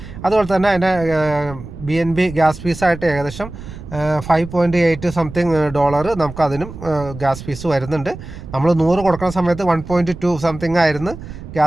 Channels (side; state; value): right; noise; rumble, 13 dB below the sound